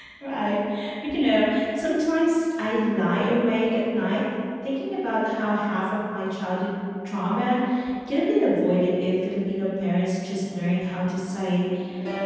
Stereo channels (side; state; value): both; identical; correlation 1.00